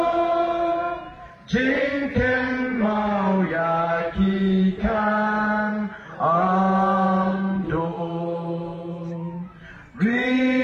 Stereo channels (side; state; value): both; identical; correlation 1.00